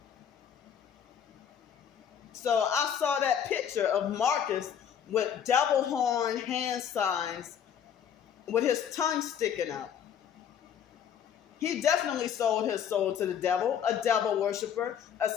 So I saw that picture of Marcus with devil horn hand signs with his tongue sticking out. He definitely sold his soul to the devil, a devil worshiper, a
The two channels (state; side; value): quieter; right; 8.5 dB